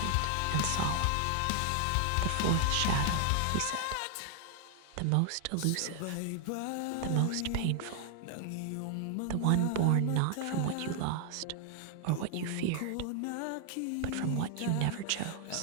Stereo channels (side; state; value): both; different; correlation 0.00